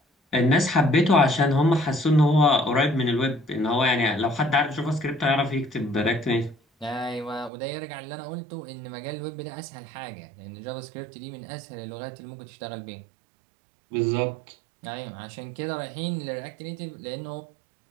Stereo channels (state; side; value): drops out; left; at 7.5 s